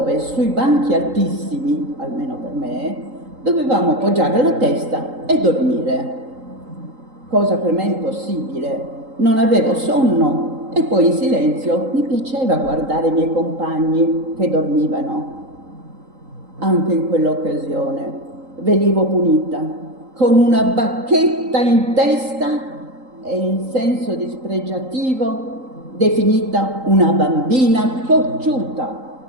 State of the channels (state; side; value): late; left; 3.8 ms